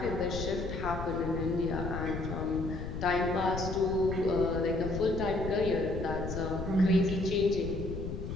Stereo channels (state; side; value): noise; left; rumble, 6 dB below the sound